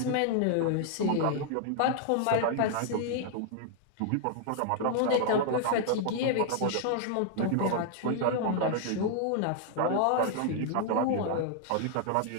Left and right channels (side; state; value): both; different; correlation 0.00